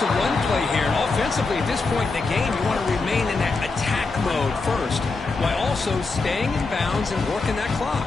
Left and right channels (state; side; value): quieter; right; 3.9 dB